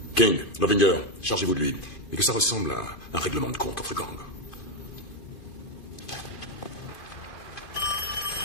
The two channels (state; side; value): late; right; 2.5 ms